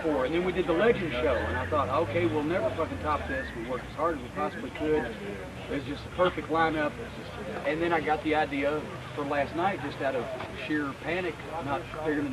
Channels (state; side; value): identical; both; correlation 1.00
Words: for. And then we did the Legend show, and I thought, okay, we'll never fucking top this. We worked as hard as we possibly could. It was just a perfect lineup. And then I got the idea for last night, just out of sheer panic, not figuring